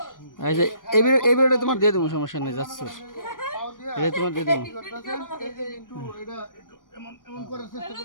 এই ভিডিওটা তোমার দিয়ে দেবো, সমস্যা নেই। যাচ্ছ এটা তোমার দিয়ে দেবো। একটু এটা এমন এমন করার চেষ্টা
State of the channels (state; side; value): late; right; 0.89 ms